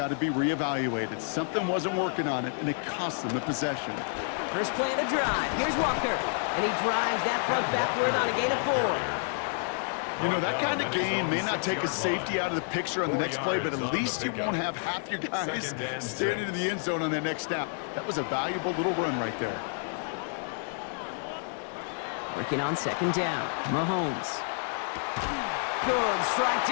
to be reevaluated. Something wasn't working on it, and it cost them the possession. First play of the drive. Here's Walker. And he drives that front backward on a gain of 4. You know, that kind of game may not take a safety out of the picture on the next play, but at least you won't have half your guys standing in the end zone on that next snap. That was a valuable little run right there. Working on 2nd down. Mahomes. Good strike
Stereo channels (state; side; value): silent; right; 58 dB below the other